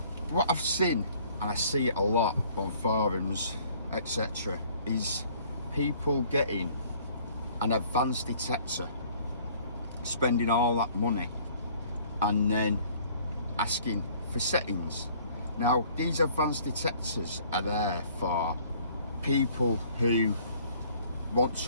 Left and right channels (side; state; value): both; inverted; correlation -0.56